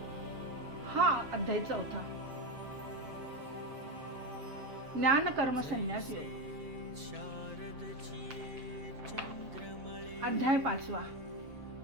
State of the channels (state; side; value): late; left; 7.6 ms